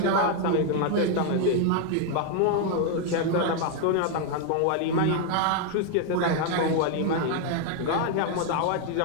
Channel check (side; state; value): both; different; correlation 0.01